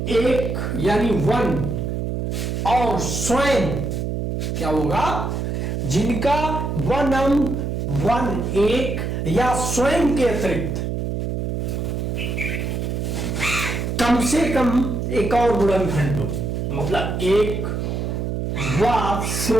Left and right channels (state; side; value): noise; right; hum, 2 dB below the sound